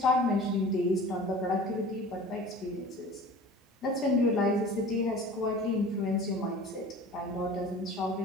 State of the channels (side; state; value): both; normal; correlation 0.41